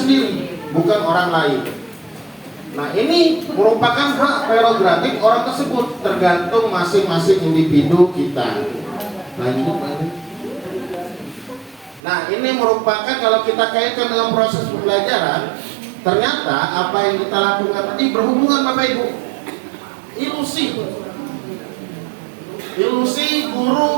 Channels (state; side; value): drops out; left; at 12.0 s